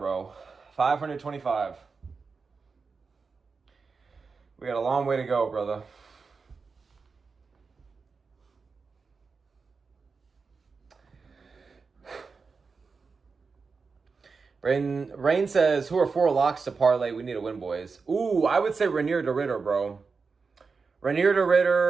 525. We got a long way to go, brother. Rain says, who are 4 locks to parlay? We need a win, boys. Ooh, I would say Rainier to Ritter, bro. Rainier to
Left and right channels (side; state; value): left; quieter; 4.8 dB